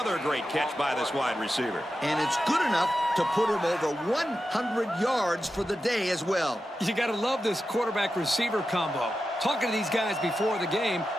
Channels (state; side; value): normal; both; correlation 0.91